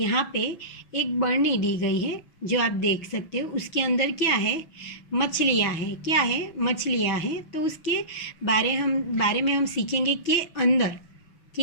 पे एक बरनी दी गई है जो आप देख सकते हो। उसके अंदर क्या है? मछलियाँ हैं। क्या है? मछलियाँ हैं। तो उसके बारे में हम सीखेंगे के अंदर।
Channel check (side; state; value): right; late; 6.1 ms